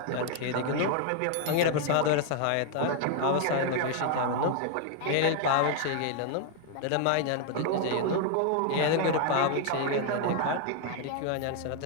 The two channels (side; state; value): both; different; correlation 0.00